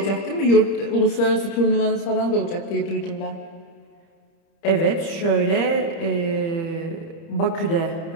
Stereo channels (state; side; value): late; right; 30 ms